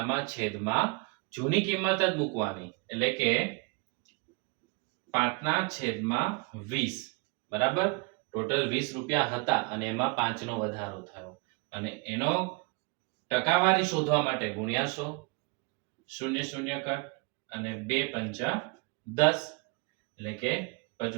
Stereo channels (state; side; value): quieter; left; 30.6 dB